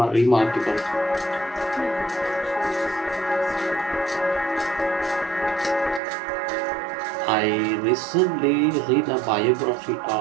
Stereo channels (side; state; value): left; drops out; at 6.0 s